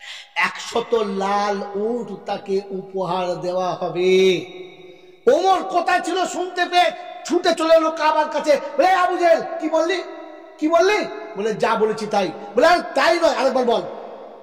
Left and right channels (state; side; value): identical; both; correlation 1.00